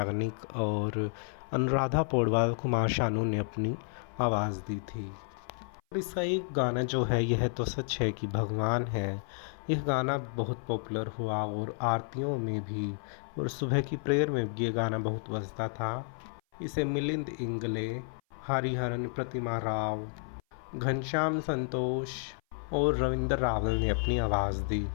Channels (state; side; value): silent; right; 55 dB below the other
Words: और अनुराधा पौडवाल, कुमार शानू ने अपनी आवाज़ दी थी। इसका एक गाना जो है यह तो सच है कि भगवान है, यह गाना बहुत पॉपुलर हुआ और आरतियों में भी और सुबह की प्रेयर में भी ये गाना बहुत बजता था। इसे मिलिंद इंगले, हरिहरन प्रतिमा राव, घनश्याम संतोष और रविंद्र रावल ने अपनी आवाज़ दी।